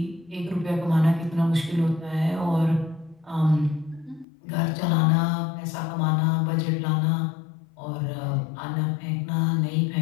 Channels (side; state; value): right; drops out; at 4.2 s